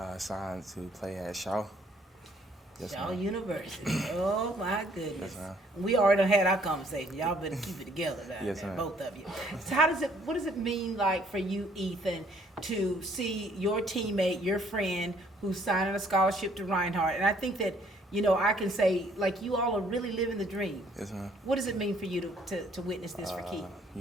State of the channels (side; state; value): both; normal; correlation 0.63